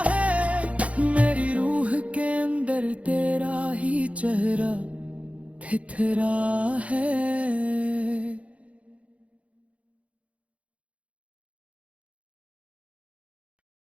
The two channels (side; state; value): left; late; 0.064 ms